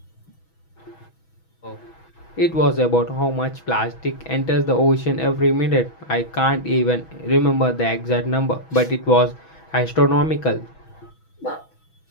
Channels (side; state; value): right; late; 6.2 ms